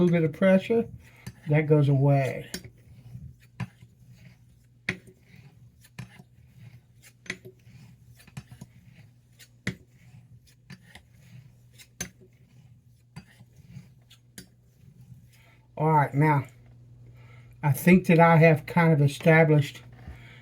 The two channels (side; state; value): both; identical; correlation 1.00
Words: bit of pressure, that goes away. All right, now, I think that I have kind of established